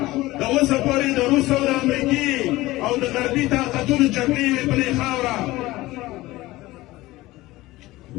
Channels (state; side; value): quieter; right; 18.5 dB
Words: د اوسه پورې د روس او د امریکې او د غربي طاقتونو جګړې وې په دې خاوره